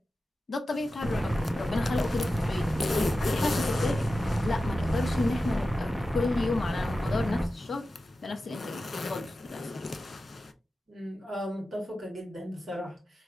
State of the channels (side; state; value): both; normal; correlation 0.93